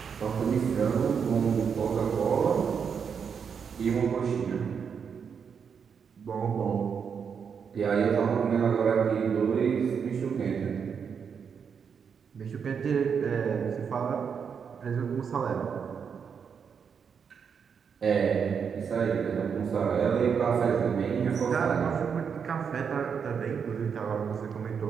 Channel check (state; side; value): quieter; left; 6.7 dB